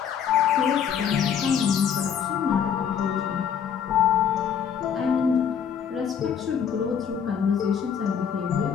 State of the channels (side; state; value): right; quieter; 7.8 dB